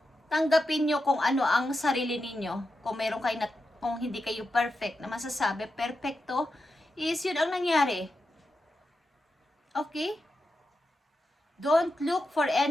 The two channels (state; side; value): normal; both; correlation 0.88